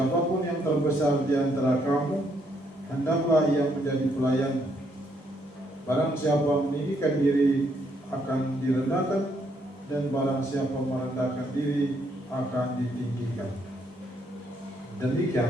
yang terbesar di antara kamu, hendaklah ia menjadi pelayan. Barang siapa meninggikan diri akan direndahkan, dan barang siapa merendahkan diri akan ditinggikan."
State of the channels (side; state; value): both; normal; correlation 0.72